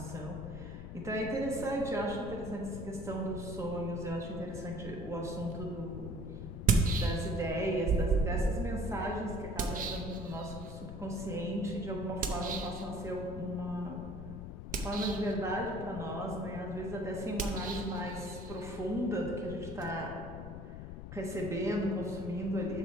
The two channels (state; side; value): noise; left; rumble, 8 dB below the sound